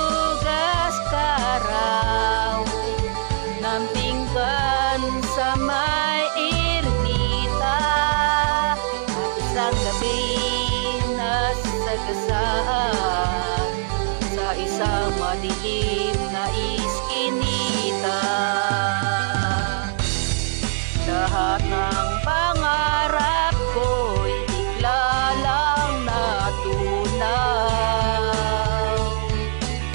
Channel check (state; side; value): silent; left; digital silence